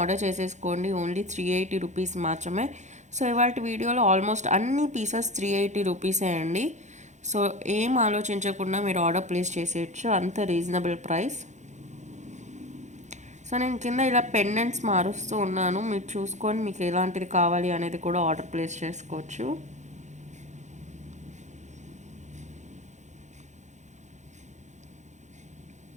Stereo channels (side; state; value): left; late; 0.34 ms